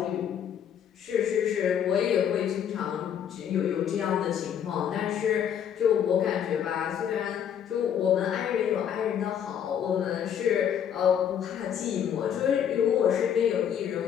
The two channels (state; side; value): quieter; right; 8.9 dB